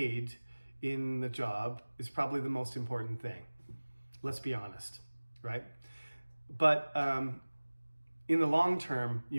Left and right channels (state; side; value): inverted; both; correlation -1.00